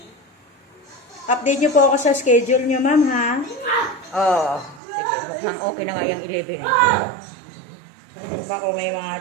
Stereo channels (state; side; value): drops out; left; at 4.8 s